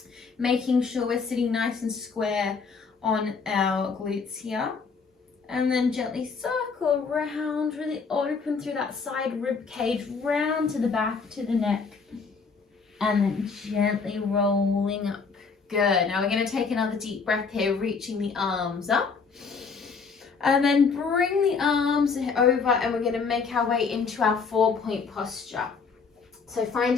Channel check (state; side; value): quieter; right; 5.1 dB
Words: Making sure we're sitting nice and square on our glutes here. And then gently circle around, really open through that side rib cage, round to the back, to the neck. And then gently rolling up. Good. Now we're going to take another deep breath here, reaching the arms up. And then bring the arms over, and we're going to make our way into our 4-point posture. So